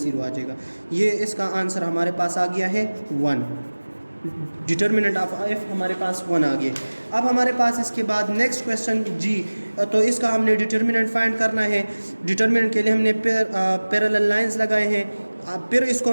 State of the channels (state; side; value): inverted; both; correlation -1.00